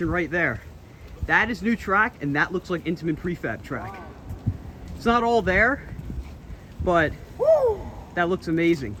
right there. That is new track, and that looks like Intamin prefab track. It's not all there, but that looks amazing.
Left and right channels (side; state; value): both; identical; correlation 1.00